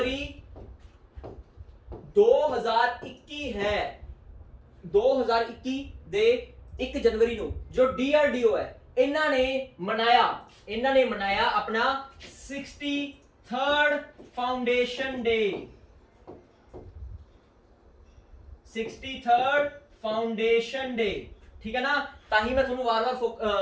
2021 ਹੈ, 2021 ਦੇ 1 ਜਨਵਰੀ ਨੂੰ ਜੋ ਡੀਆਰਡੀਓ ਹੈ ਇਹਨਾਂ ਨੇ ਮਨਾਇਆ ਆਪਣਾ 63rd ਫਾਊਂਡੇਸ਼ਨ ਡੇ। 63rd ਫਾਊਂਡੇਸ਼ਨ ਡੇ। ਠੀਕ ਹੈ ਨਾ, ਤਾਂ ਹੀ ਮੈਂ ਤੁਹਾਨੂੰ ਵਾਰ-ਵਾਰ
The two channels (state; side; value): identical; both; correlation 1.00